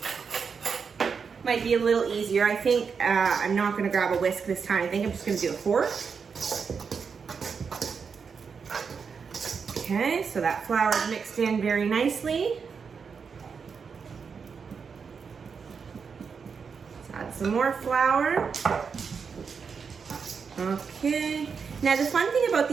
Might be a little easier. I think I'm not gonna grab a whisk this time. I think I'm just gonna do a fork. Okay, so that flour is mixed in very nicely. Let's add some more flour. Okay. Now the fun thing about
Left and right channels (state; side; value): quieter; left; 5.9 dB